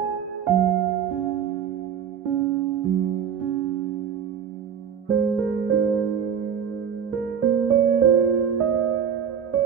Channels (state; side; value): quieter; left; 7.9 dB